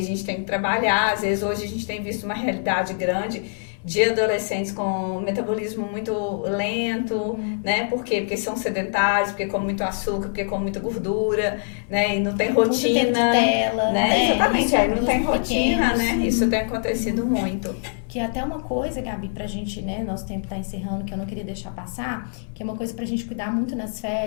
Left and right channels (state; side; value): silent; right; 59 dB below the other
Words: gente tem que trabalhar. Às vezes hoje a gente tem visto uma realidade grande de adolescentes com metabolismo muito lento, né? Por quê? Porque são sedentários, porque comem muito açúcar, porque comem muita gordura, né? E não tem rotina, né? Exatamente, isso, aí não tem rotina, né? Isso tem acontecido muito. Que é até uma coisa, Gabi, pra gente, né, nosso tempo tá encerrando, que eu não queria deixar passar, que é uma coisa pra gente cuidar muito nas